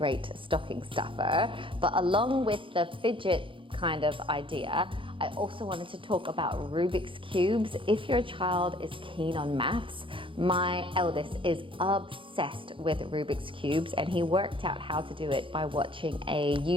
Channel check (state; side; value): late; left; 0.25 ms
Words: stocking stuffer. But along with the Fidget kind of idea, I also wanted to talk about Rubik's Cubes. If your child is keen on maths, my eldest is obsessed with Rubik's Cubes, and he worked out how to do it by watching a